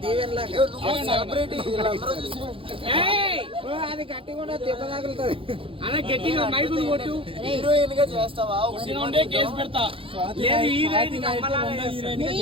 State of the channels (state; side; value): late; left; 0.26 ms